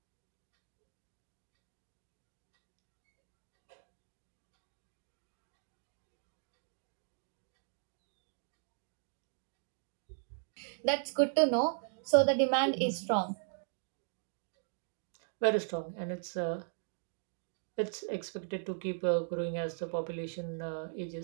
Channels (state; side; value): silent; left; digital silence